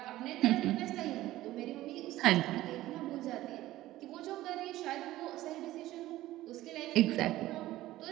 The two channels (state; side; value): quieter; left; 15.8 dB